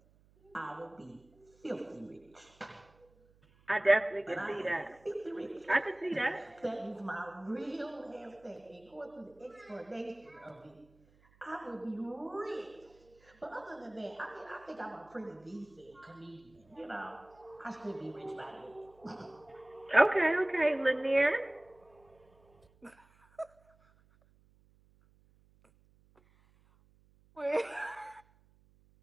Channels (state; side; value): noise; right; hum, 30 dB below the sound